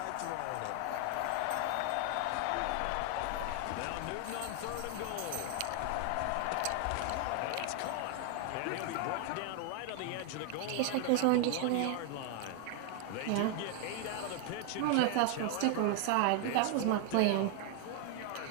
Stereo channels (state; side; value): different; both; correlation 0.00